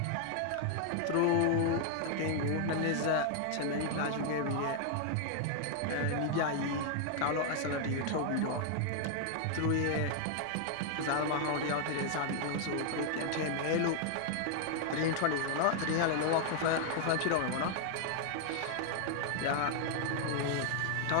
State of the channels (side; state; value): both; different; correlation 0.00